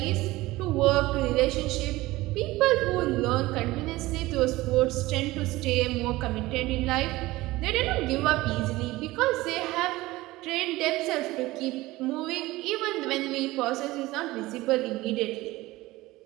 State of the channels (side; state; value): left; quieter; 18.9 dB